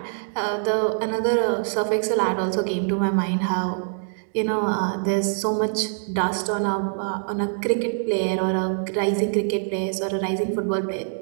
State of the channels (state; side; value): silent; left; digital silence